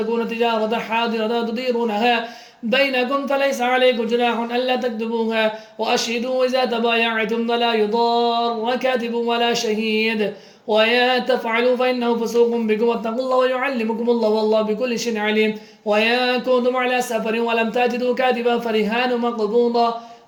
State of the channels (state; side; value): identical; both; correlation 1.00